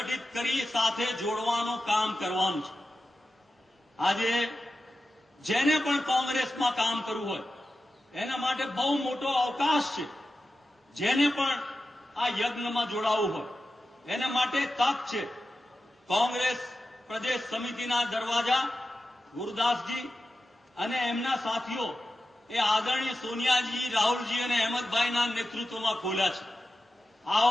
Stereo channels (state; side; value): normal; both; correlation 0.93